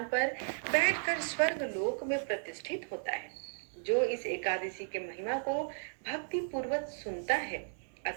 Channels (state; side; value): silent; left; digital silence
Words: पर बैठकर स्वर्ग लोक में प्रतिष्ठित होता है। जो इस एकादशी के महिमा को भक्ति पूर्वक सुनता है